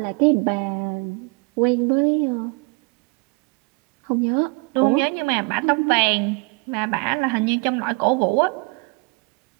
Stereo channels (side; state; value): left; quieter; 29.0 dB